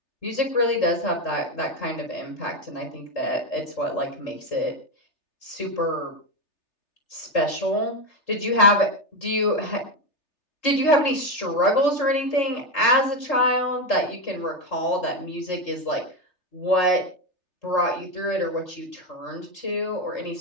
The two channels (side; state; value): right; late; 3.3 ms